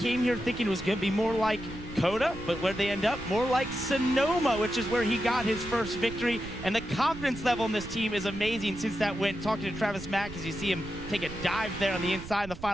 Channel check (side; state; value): right; noise; rumble, 13 dB below the sound